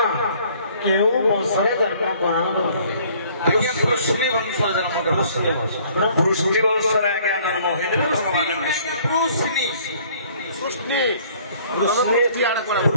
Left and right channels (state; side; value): inverted; both; correlation -0.57